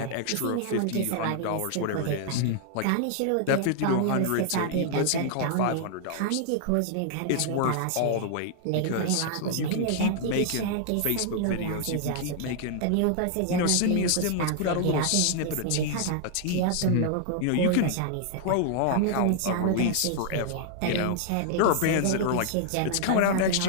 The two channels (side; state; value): both; different; correlation -0.01